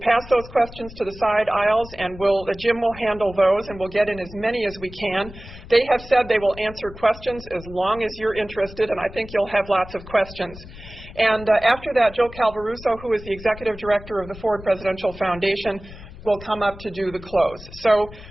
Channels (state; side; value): noise; left; rumble, 16 dB below the sound